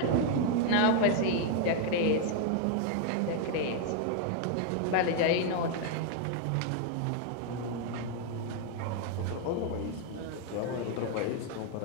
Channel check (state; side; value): different; both; correlation 0.00